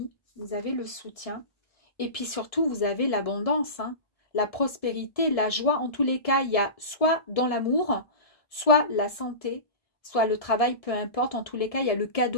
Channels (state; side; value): late; right; 1.7 ms